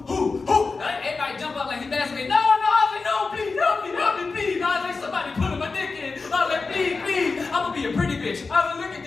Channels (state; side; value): quieter; right; 4.2 dB